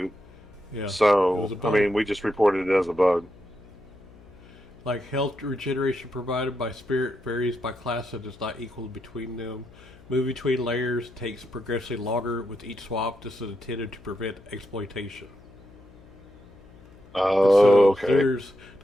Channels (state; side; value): noise; left; hum, 23 dB below the sound